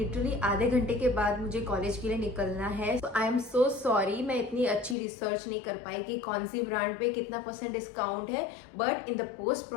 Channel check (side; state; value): right; drops out; at 5.0 s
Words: आधे घंटे के बाद मुझे कॉलेज के लिए निकलना है। So I am so sorry, मैं इतनी अच्छी रिसर्च नहीं कर पाई कि कौन सी ब्रांड पे कितना % डिस्काउंट है, but in the post